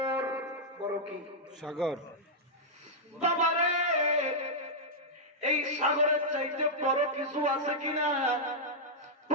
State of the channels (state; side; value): normal; both; correlation -0.08